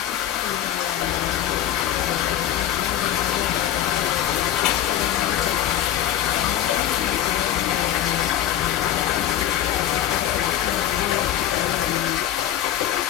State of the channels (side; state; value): right; quieter; 11.4 dB